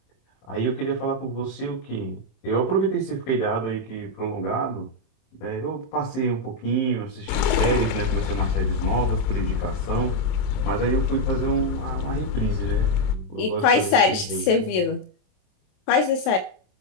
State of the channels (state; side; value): late; right; 27 ms